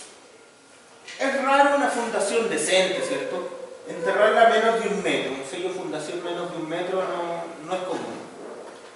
Es raro una fundación decente, ¿cierto? Enterrarla a menos de 1 metro. Un sello de fundación menos de 1 metro no es común.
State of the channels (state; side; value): identical; both; correlation 1.00